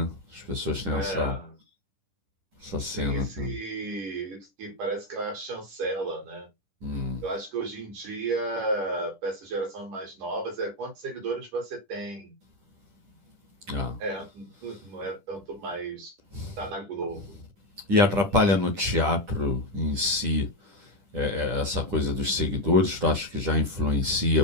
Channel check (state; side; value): late; left; 10 ms